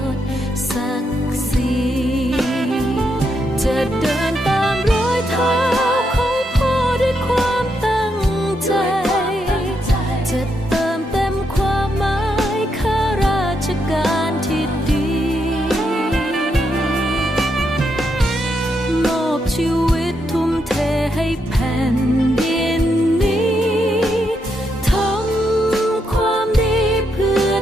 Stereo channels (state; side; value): normal; both; correlation 0.81